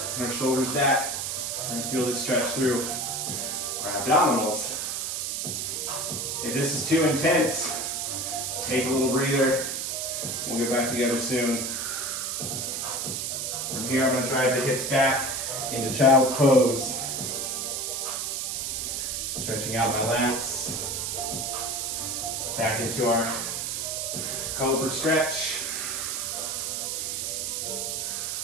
and our shoulders back. We're gonna feel this stretch through our abdominals. If this is too intense, take a little breather. We'll get back together soon. From here, I'm gonna drive the hips back into child's pose. Stretching out my lats. Back into our cobra stretch.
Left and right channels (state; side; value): noise; right; hiss, 2 dB below the sound